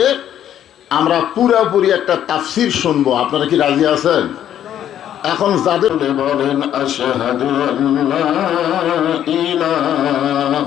আমরা পুরোপুরি একটা তাফসীর শুনবো। আপনারা কি রাজি আছেন? এখন যাদের বলেন আশহাদু আল্লা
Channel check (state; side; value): quieter; right; 10.6 dB